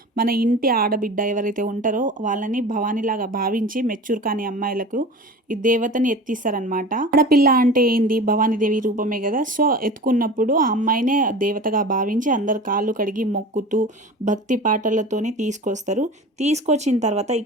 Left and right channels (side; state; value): both; normal; correlation 0.35